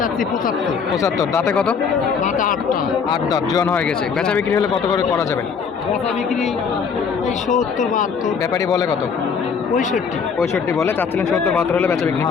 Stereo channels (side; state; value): right; quieter; 6.1 dB